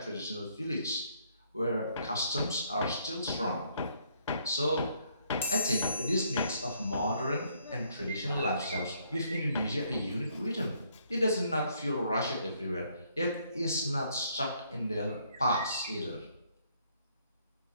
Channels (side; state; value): both; inverted; correlation -0.69